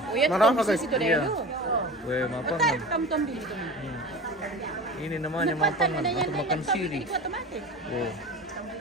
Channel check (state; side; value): normal; both; correlation 0.34